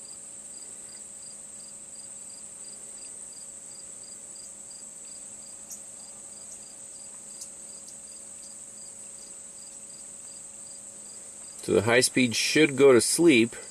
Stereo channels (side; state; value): both; identical; correlation 1.00